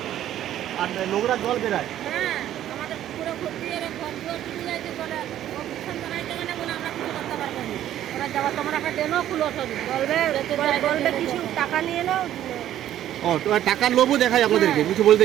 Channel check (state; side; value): quieter; left; 12.0 dB